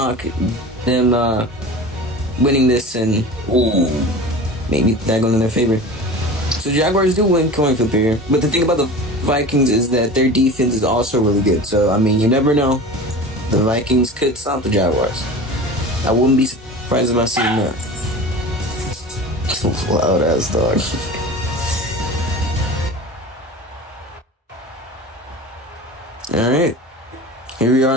them winning this and maybe that going in their favor. So Jaguars do win coin flip here. But the thing about the Vikings is that their defense is also really good. So, I mean, you never know. The Vikings could stop the Jaguars. I wouldn't be surprised if I see that. Loud ass dog. Alright. Here we are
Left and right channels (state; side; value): normal; both; correlation 0.35